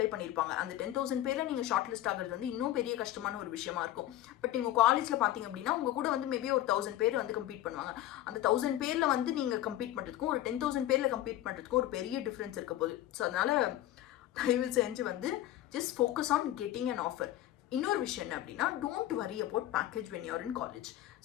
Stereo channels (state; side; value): quieter; right; 13.8 dB